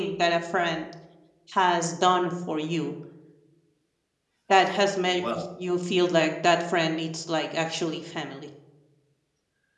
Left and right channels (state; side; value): identical; both; correlation 1.00